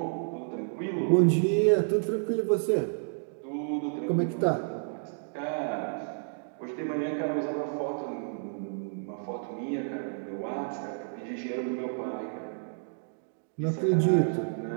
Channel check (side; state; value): left; silent; digital silence